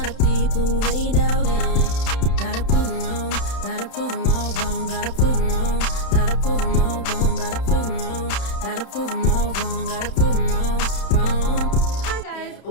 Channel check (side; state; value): right; late; 31 ms